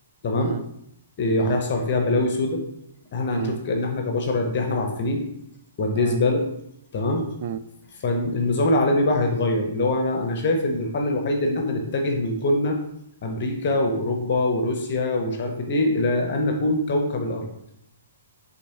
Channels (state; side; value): inverted; both; correlation -0.51